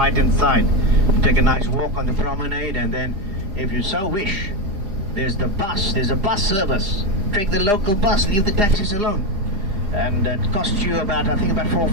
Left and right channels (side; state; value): left; late; 4.9 ms